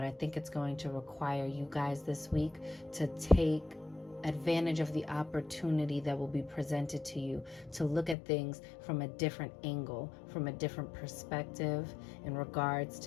I think it's going to require you guys this week to take advantage of the opportunity that will be presented to you to look at things from a different angle, from a different perspective in regards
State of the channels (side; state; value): right; drops out; at 8.2 s